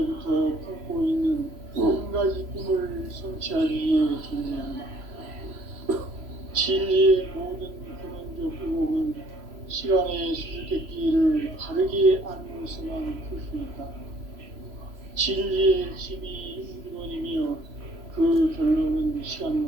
품고 있는 한 가지 꿈을 성취하기 위해 존재한다. 진리의 모든 근원적 의혹은 시간의 수수께끼를 바르게 알므로서만 풀 수 있다. 진리의 핵심이 우주론이며 그 결론은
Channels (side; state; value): left; late; 3.0 ms